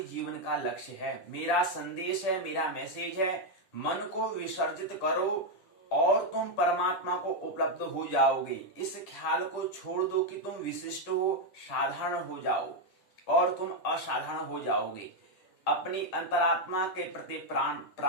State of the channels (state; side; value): late; right; 10 ms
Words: जीवन का लक्ष्य है। मेरा संदेश है, मेरा मैसेज है, मन को विसर्जित करो और तुम परमात्मा को उपलब्ध हो जाओगे। इस ख्याल को छोड़ दो कि तुम विशिष्ट हो, साधारण हो जाओ और तुम असाधारण हो जाओगे। अपनी अंतरात्मा के प्रति